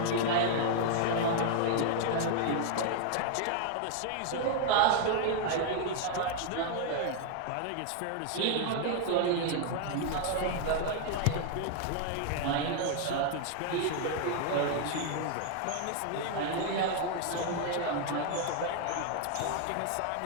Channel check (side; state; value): both; different; correlation 0.00